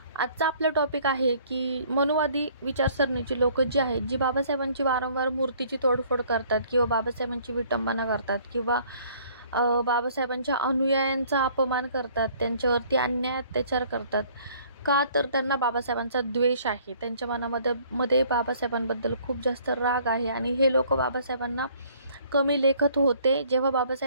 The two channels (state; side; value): inverted; both; correlation -0.58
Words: आजचा आपला टॉपिक आहे की मनुवादी विचारसरणीची लोक जी आहेत, जी बाबासाहेबांची वारंवार मूर्तीची तोडफोड करतात किंवा बाबासाहेबांची विटंबना करतात किंवा बाबासाहेबांच्या अनुयायांचा अपमान करतात, त्यांच्यावरती अन्याय अत्याचार करतात. का तर त्यांना बाबासाहेबांचा द्वेष आहे, त्यांच्या मनामध्ये बाबासाहेबांबद्दल खूप जास्त राग आहे आणि हे लोक बाबासाहेबांना कमी लेखत होते. जेव्हा